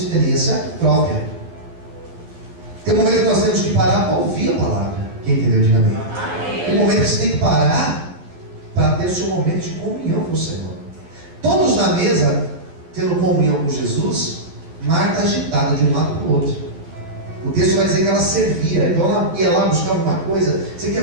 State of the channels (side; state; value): left; late; 12 ms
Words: própria. Tem um momento que nós temos que parar para ouvir a palavra. Quem entendeu, diga amém. Tem um momento que você tem que parar para ter o seu momento de comunhão com o Senhor. Todos na mesa, tendo comunhão com Jesus, Marta agitada de um lado para o outro. O texto vai dizer que ela servia, então ela ia lá buscar alguma coisa. Você quer